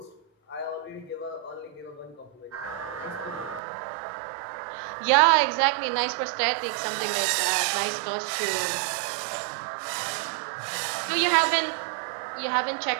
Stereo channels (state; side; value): drops out; left; at 3.6 s